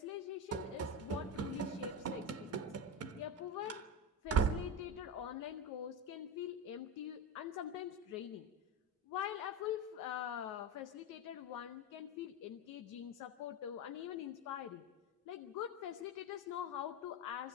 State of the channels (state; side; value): normal; both; correlation 0.20